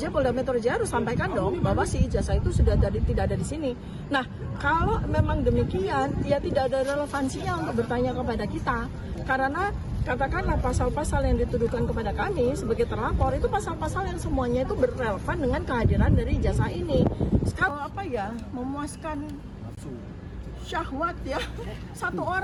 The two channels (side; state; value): both; identical; correlation 1.00